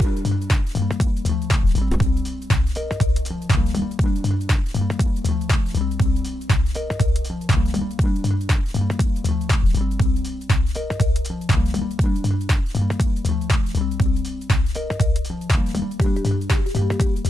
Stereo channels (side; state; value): both; normal; correlation 0.87